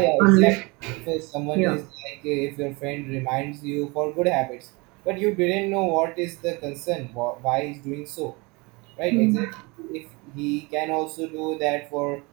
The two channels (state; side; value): quieter; left; 26.8 dB